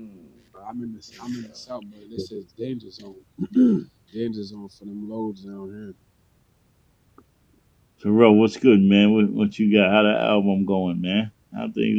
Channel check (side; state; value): both; identical; correlation 1.00